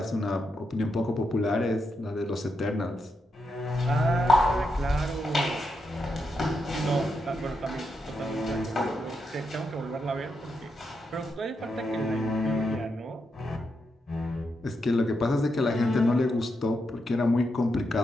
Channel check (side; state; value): both; normal; correlation 0.84